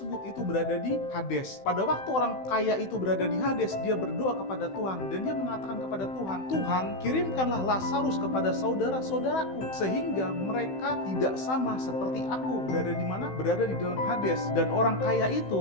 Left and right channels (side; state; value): right; late; 16 ms